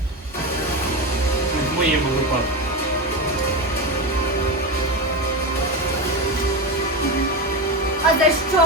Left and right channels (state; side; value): normal; both; correlation 0.18